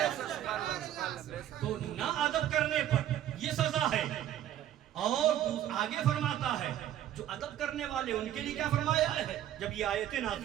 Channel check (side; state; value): left; quieter; 11.7 dB